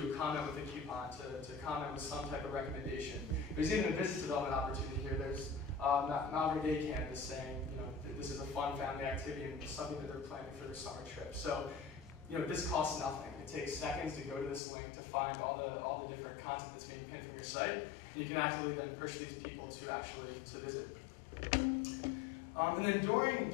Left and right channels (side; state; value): right; drops out; at 14.6 s